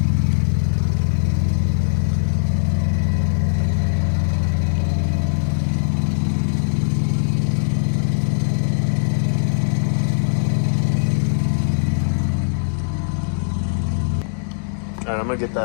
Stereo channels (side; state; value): right; silent; 66 dB below the other